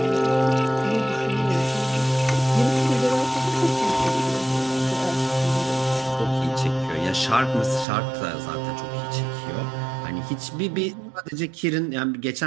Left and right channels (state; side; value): drops out; left; at 7.9 s